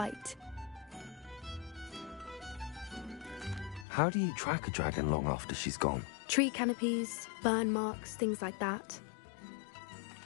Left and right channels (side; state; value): right; drops out; at 3.9 s